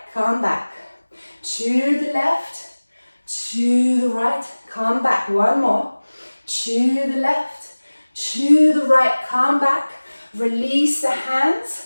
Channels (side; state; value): both; inverted; correlation -1.00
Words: come back. To the left, to the right, come back. One more. To the left, to the right, come back. Release the hands,